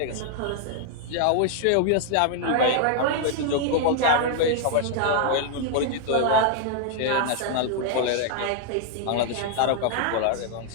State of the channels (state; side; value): different; both; correlation 0.00